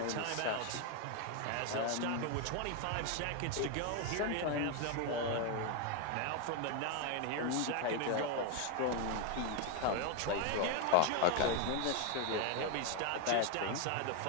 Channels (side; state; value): both; different; correlation 0.01